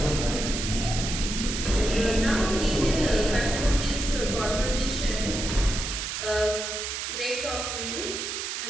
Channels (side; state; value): right; noise; hiss, 4 dB below the sound